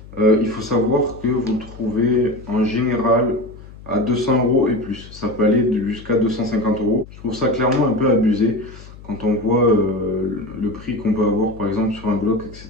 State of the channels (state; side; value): noise; left; hum, 18 dB below the sound